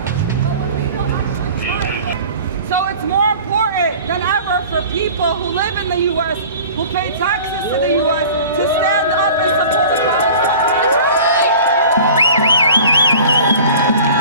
So it's more important than ever for people who live in the U.S., who pay taxes to the U.S., to stand up and support Palestine.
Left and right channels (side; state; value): both; inverted; correlation -0.43